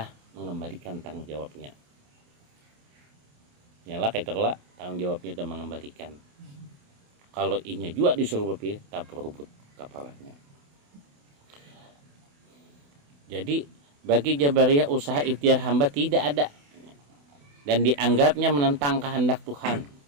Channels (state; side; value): late; left; 28 ms